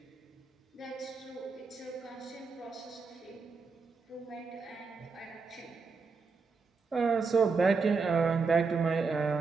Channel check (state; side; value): quieter; left; 4.7 dB